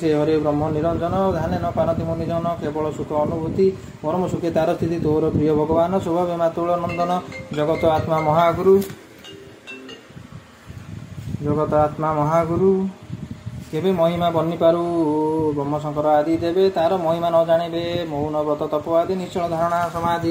हरे ब्रह्म निरंजन ध्यान न पारति मुनिजन केवल सुख अनुभूति परम सुखे तार स्थिति तोर प्रिय भगवान स्वभाव मातुल नंदन जगत आत्मा महागुरु केबे महिमा बनी पारू ब्रह्म शंकर आदि देवे तार महिमा न जानिबे मौन व्रत तप आदि निश्चल धारणा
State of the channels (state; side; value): identical; both; correlation 1.00